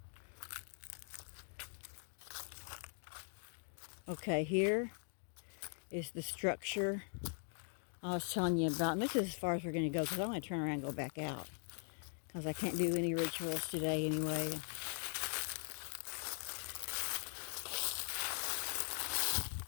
Okay, here is the structure I was telling you about. And this is as far as we're going to go because I want to turn around and go back out because I can't do any rituals today anyway.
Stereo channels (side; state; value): right; silent; 50 dB below the other